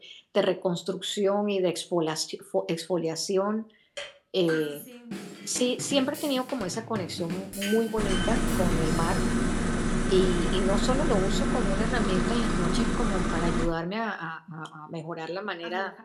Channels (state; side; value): identical; both; correlation 1.00